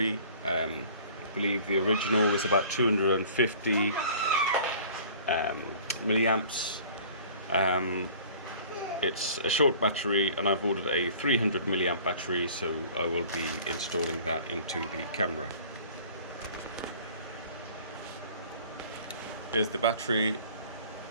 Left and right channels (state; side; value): inverted; both; correlation -0.48